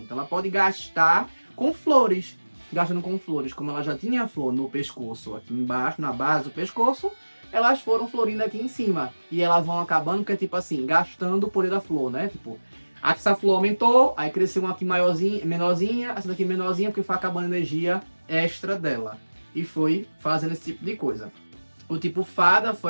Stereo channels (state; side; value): inverted; both; correlation -1.00